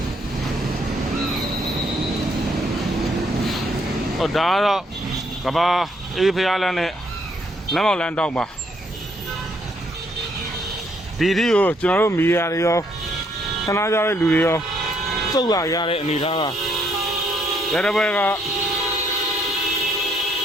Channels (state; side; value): normal; both; correlation 0.70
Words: ဟုတ်ဒါကတော့ကဘာအေးဖျားလန်းနဲ့လမ်းမောက်လမ်းတောက်ပါဒီဒီကိုကျွန်တော်တို့မီဒီယာတွေရောဆန္ဒပြတဲ့လူတွေရောစုတ်လာရတဲ့အနေအထားကရတဲ့ဘက်က